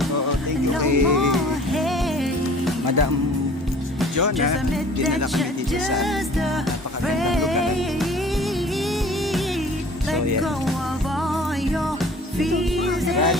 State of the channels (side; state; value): both; normal; correlation 0.49